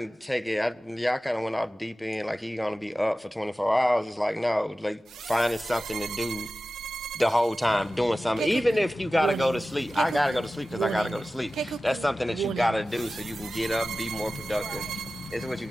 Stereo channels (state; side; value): normal; both; correlation 0.95